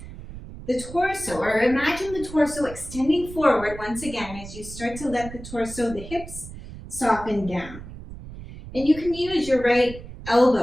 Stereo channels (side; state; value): right; noise; rumble, 13 dB below the sound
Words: the torso, or imagine the torso extending forward once again as you start to let the torso, the hips, soften down. And you can use your right